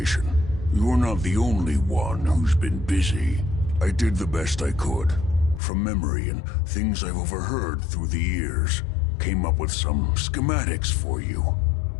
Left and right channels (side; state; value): right; drops out; at 5.6 s